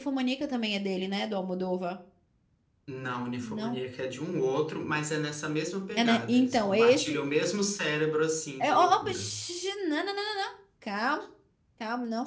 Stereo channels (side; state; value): both; identical; correlation 1.00